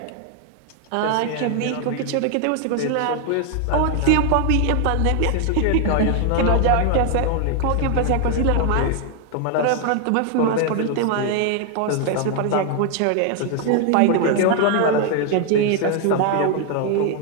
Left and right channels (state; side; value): different; both; correlation 0.00